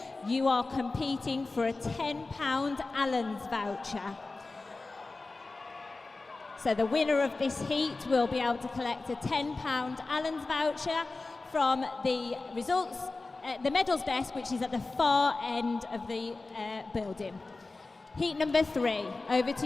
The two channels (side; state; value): right; quieter; 3.5 dB